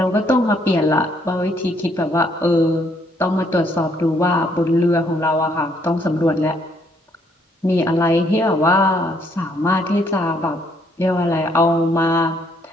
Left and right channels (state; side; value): normal; both; correlation 0.69